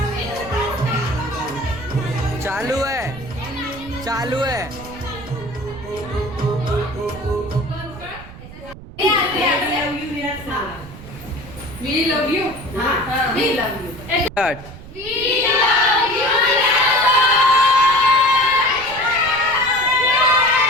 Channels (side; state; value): right; noise; rumble, 16 dB below the sound